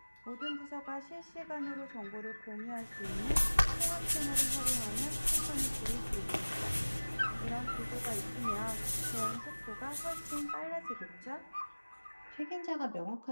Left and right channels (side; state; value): both; inverted; correlation -1.00